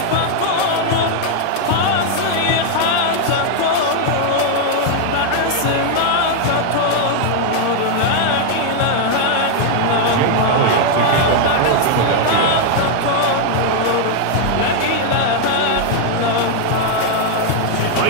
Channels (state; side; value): different; both; correlation 0.00